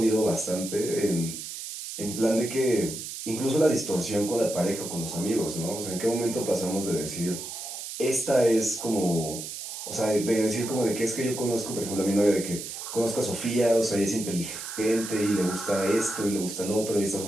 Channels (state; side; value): noise; right; hiss, 8 dB below the sound